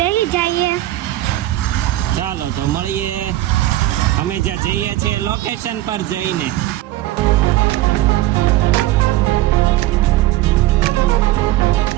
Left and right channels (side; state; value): left; quieter; 15.8 dB